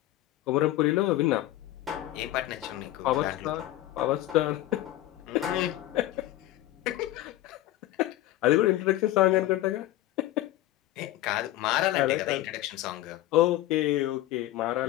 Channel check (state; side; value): quieter; right; 15.2 dB